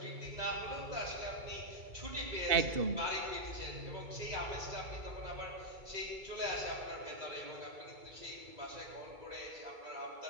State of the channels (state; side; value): late; left; 2.3 ms